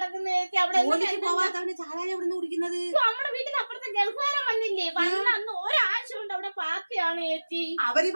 ചേച്ചി. അവിടെ പോവാത്തവന് ചാരായ എവിടുന്ന് കുടിക്കുന്നത്? നമ്മുടെ വീട്ടിൽ അപ്പുറത്തെ ഗൾഫുകാരൻ വന്നില്ലേ, വന്ന അന്ന് ഒരാഴ്ച കൊണ്ട് അവിടെ പാർട്ടിയാണ് ചേച്ചി. അവര്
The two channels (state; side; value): inverted; both; correlation -1.00